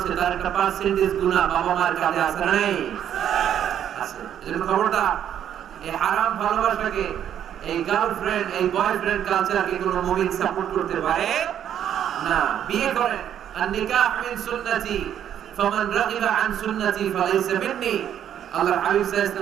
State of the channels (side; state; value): left; quieter; 9.9 dB